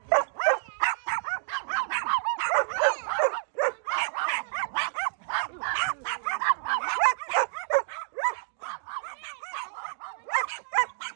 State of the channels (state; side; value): silent; left; digital silence